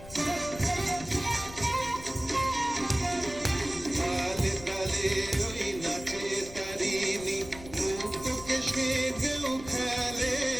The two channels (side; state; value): left; noise; rumble, 15 dB below the sound